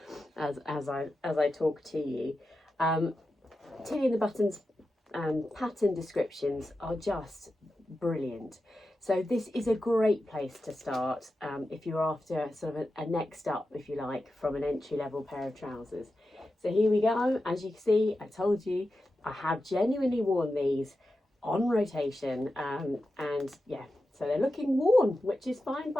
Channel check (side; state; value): both; normal; correlation 0.91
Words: as I talk to you. Tilly and the Buttons pattern descriptions are just brilliant. So this is a great place to start if you're after sort of a next up, if you like, from an entry-level pair of trousers. So here we go. As you can see, I told you, I have genuinely worn these on rotation, and yeah, so they're looking worn, which is fine